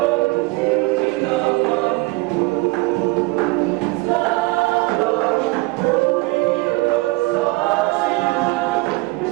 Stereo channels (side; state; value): left; quieter; 23.7 dB